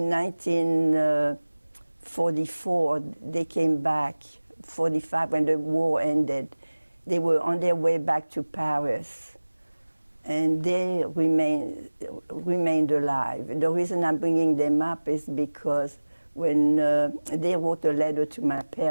1944, they came back, 45, when the war ended. They were on their way back to Paris, and they remained alive. The reason I'm bringing them up is because when they wrote a letter to my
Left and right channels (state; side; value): inverted; both; correlation -1.00